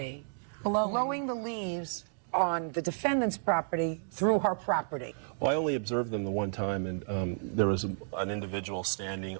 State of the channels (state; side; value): silent; left; digital silence